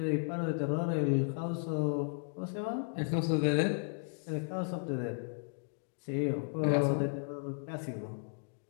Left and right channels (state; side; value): silent; right; digital silence